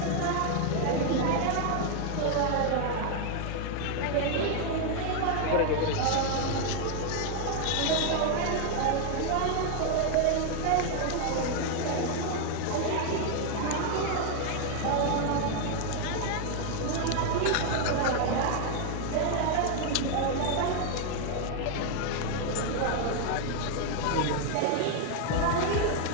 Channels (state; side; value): different; both; correlation 0.00